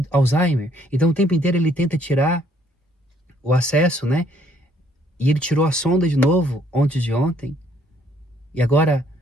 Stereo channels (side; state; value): both; normal; correlation 0.65